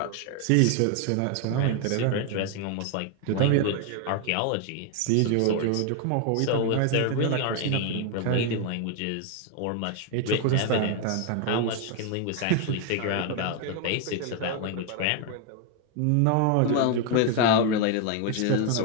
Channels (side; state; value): both; different; correlation 0.00